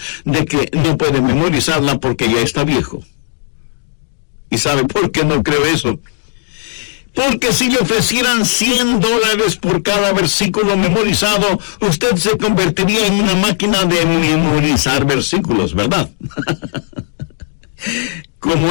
de que no puede memorizarla porque ya está viejo. ¿Y sabe por qué no creo eso? Porque si le ofrecieran $100 por cada versículo memorizado, usted se convertiría en una máquina de memorizar versículos, ¿verdad? Como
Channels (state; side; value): silent; right; digital silence